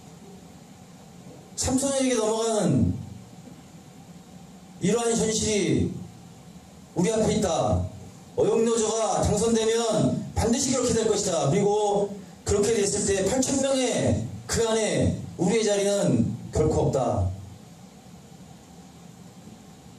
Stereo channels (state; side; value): identical; both; correlation 1.00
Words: 삼성에게 넘어가는 이러한 현실이 우리 앞에 있다. 어영노조가 당선되면 반드시 그렇게 될 것이다. 그리고 그렇게 됐을 때 8,000명의 그 안에 우리의 자리는 결코 없다.